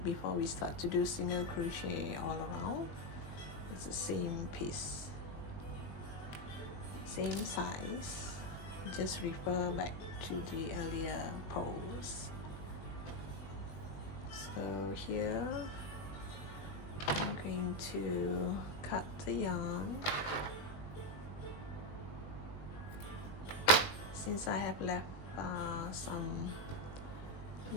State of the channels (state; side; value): late; right; 20 ms